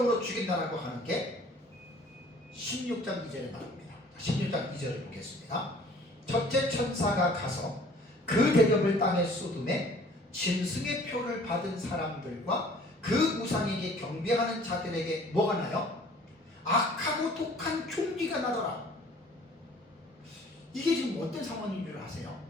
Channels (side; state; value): both; normal; correlation 0.52